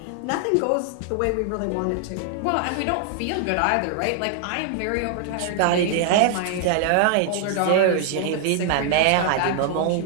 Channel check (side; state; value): both; different; correlation 0.00